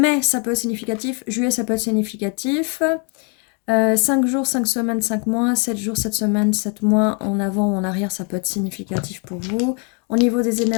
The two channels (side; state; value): right; quieter; 36.4 dB